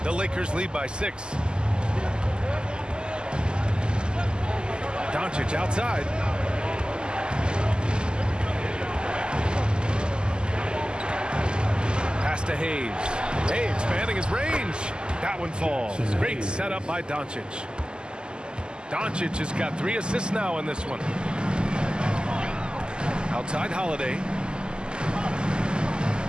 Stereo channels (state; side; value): late; left; 0.047 ms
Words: The Lakers lead by 6. Doncic outside. Pass to Hayes. Hey, expanding his range. That one falls. Great setup by Doncic. Doncic has got 3 assists now in this one. Outside Holiday.